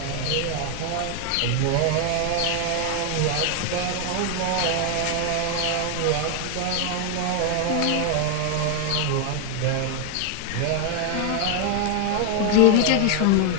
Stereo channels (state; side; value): different; both; correlation 0.00